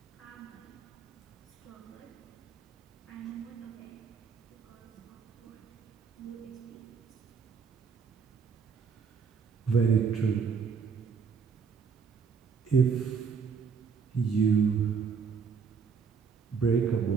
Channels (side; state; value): left; quieter; 6.0 dB